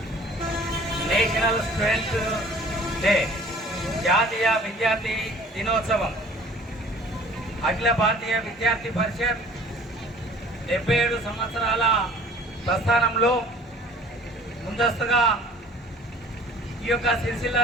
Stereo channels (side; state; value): both; normal; correlation 0.50